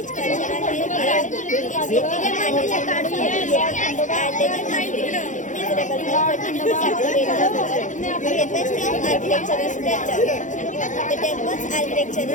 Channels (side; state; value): right; late; 0.36 ms